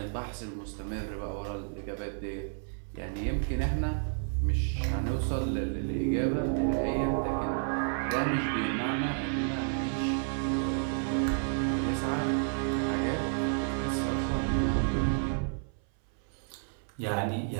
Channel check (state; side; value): silent; left; 57 dB below the other